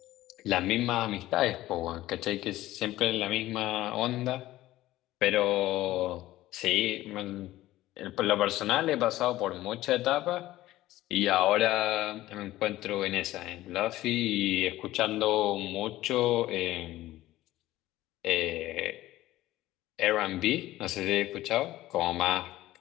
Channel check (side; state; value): right; quieter; 15.9 dB